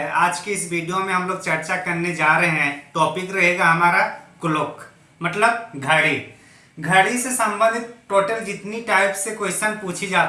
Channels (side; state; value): both; identical; correlation 1.00